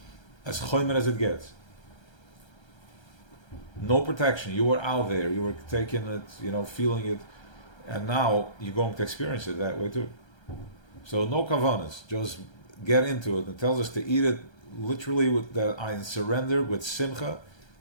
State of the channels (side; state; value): right; late; 1.3 ms